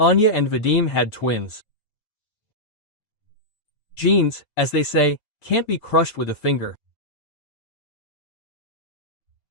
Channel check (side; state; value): right; late; 6.8 ms